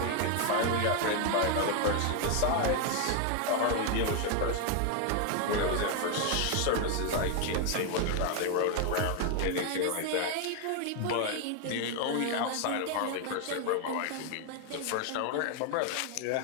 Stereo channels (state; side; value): different; both; correlation 0.01